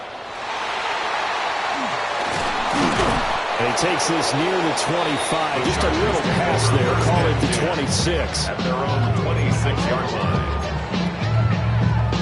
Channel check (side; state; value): both; identical; correlation 1.00